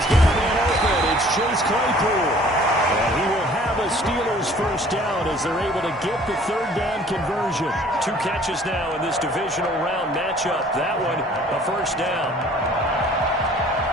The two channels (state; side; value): normal; both; correlation 0.53